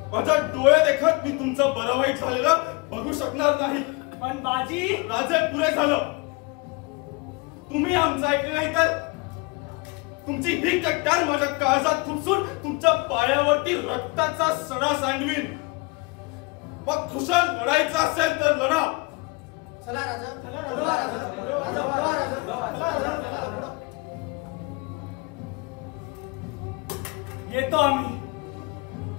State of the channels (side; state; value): right; quieter; 26.5 dB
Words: माझ्या डोळे देखत मी तुमचं बरं वाईट झालेलं बघू शकणार नाही। पण बाजी राजे पुरे झालं, तुम्ही आमचं ऐकलं नाही तर तुमची ही कट्टार माझ्या काळजात खुपसून तुमच्या पायावरती रक्ताचा सडा सांडवीन। मग खुशाल लढायचं असेल तर लढा। चला राजा, येतो आम्ही।